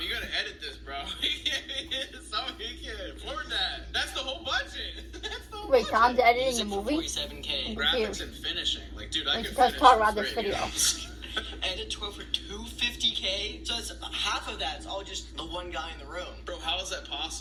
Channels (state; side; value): identical; both; correlation 1.00